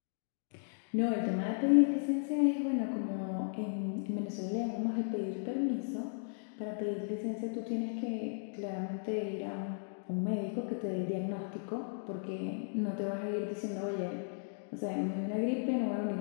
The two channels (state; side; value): silent; right; digital silence